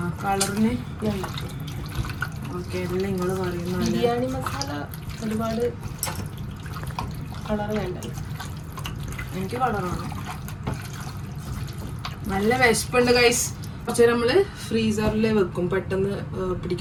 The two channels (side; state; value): both; identical; correlation 1.00